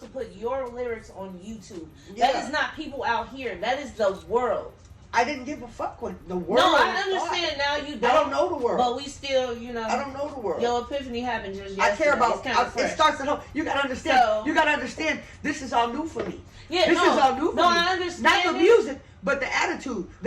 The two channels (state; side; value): identical; both; correlation 1.00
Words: put your lyrics on YouTube. That is not people out here. That is the world. I didn't give a fuck what the world. No, I understand now. You don't. I don't know the world. But we still, I don't know the world. Your epiphany happened just yesterday. I care about. It starts at home. You gotta understand. So, you gotta understand. This is all new for me. Yeah, this is all new for me. No, I understand. Not the music, but the attitude,